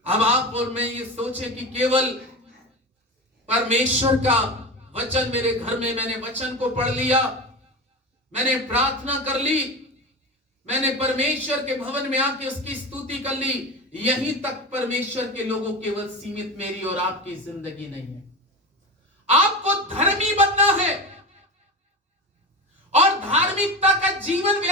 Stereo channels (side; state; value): both; normal; correlation 0.25